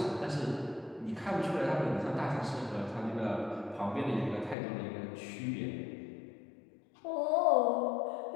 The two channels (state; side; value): drops out; right; at 4.5 s